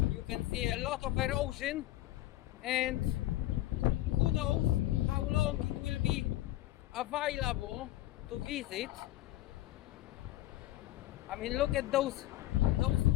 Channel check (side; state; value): right; quieter; 15.4 dB